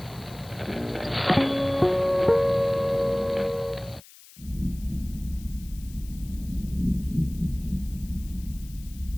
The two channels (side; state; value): left; noise; hiss, 21 dB below the sound